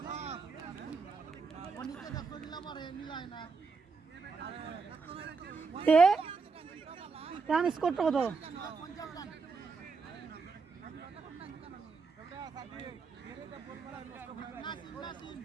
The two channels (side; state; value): left; quieter; 4.7 dB